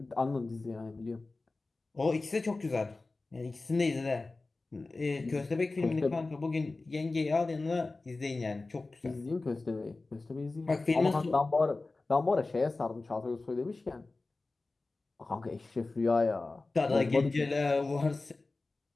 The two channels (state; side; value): quieter; right; 3.4 dB